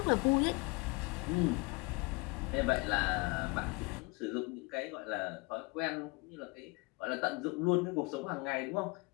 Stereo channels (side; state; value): right; quieter; 26.9 dB